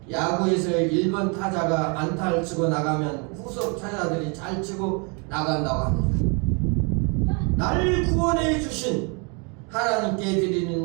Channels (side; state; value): left; quieter; 34.0 dB